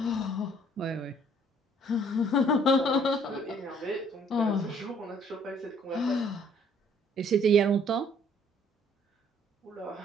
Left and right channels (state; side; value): normal; both; correlation 0.60